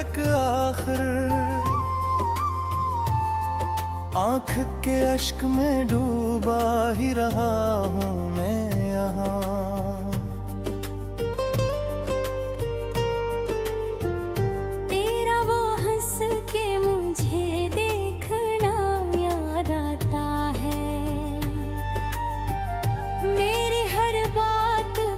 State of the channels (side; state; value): both; identical; correlation 1.00